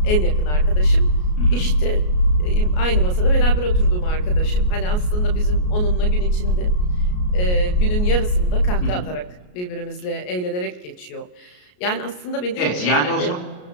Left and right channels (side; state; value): right; late; 33 ms